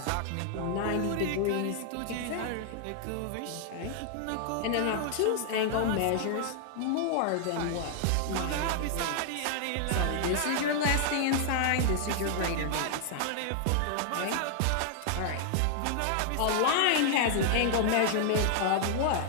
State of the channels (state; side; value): different; both; correlation 0.00